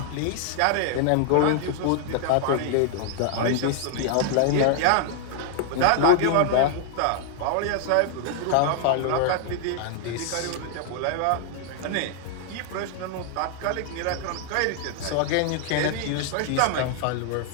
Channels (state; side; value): different; both; correlation 0.00